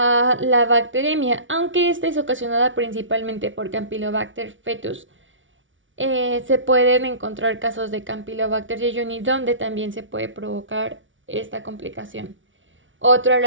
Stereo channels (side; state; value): left; late; 0.56 ms